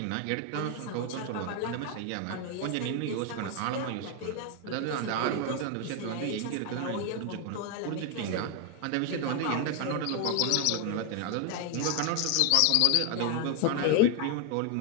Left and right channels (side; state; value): both; different; correlation 0.01